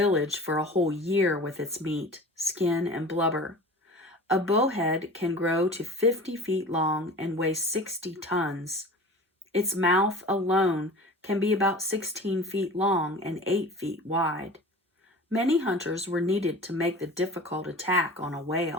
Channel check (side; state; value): both; normal; correlation 0.39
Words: for a whole year with its meat, skin, and blubber. A bowhead can grow to 50 feet long and weigh 60 tons. Its mouth alone can be about 16 feet long and 8 feet wide. Many hunters were needed to make the difficult attack on a